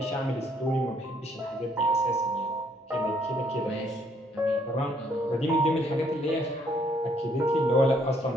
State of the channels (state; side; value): normal; both; correlation 0.67